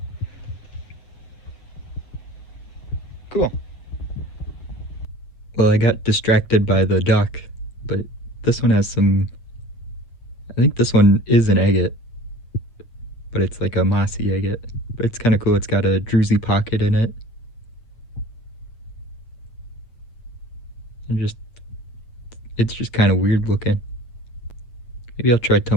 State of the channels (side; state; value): right; late; 8.8 ms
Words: Cool. Well, I got distracted by the duck, but this one has some, I think this one is an agate, but it's like a mossy agate. But it's kind of cool. It's got a druzy pocket in it. And it's just kind of weird looking. Maybe I'll try